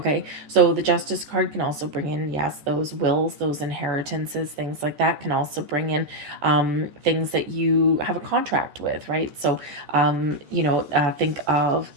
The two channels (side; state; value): left; late; 14 ms